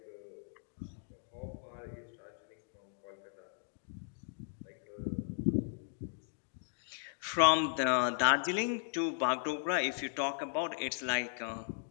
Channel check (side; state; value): right; silent; digital silence